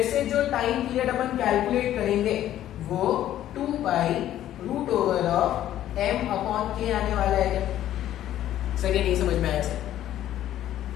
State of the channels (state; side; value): quieter; right; 12.4 dB